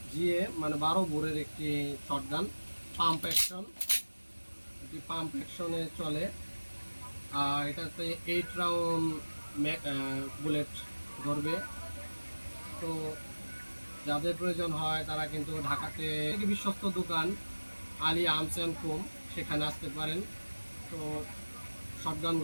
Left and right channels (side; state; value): both; inverted; correlation -1.00